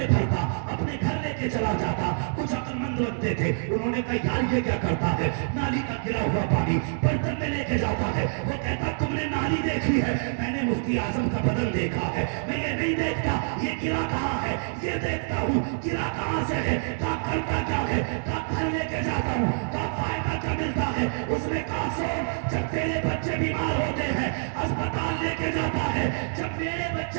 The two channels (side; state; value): left; silent; digital silence